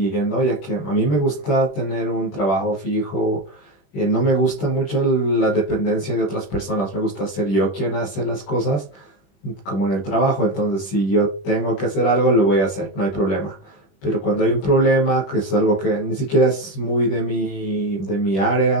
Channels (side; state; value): right; late; 21 ms